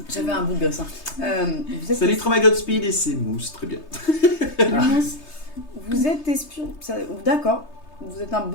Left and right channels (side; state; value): right; late; 3.3 ms